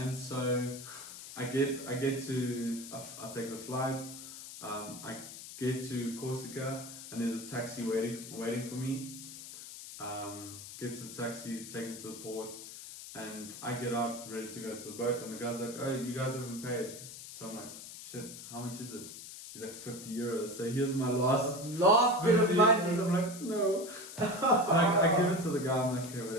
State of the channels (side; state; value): left; noise; hiss, 12 dB below the sound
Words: so I get to I take the flight. I get to Corsica and there's a taxi waiting for me. Get to the taxi, take me to the port, and I get out ready to go to the boat. And the guy's like, "Oh, you guys haven't paid." So I'm like, "Shit, how much is it?" He's like 50 euros. So here's my last bit of money. I'm like, no. I give it to the guy. I'm like, okay,